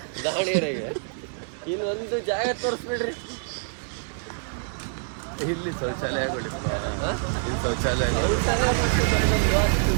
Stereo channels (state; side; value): silent; left; 61 dB below the other